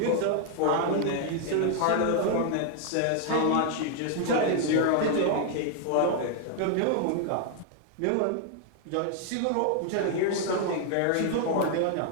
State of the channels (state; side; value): different; both; correlation 0.00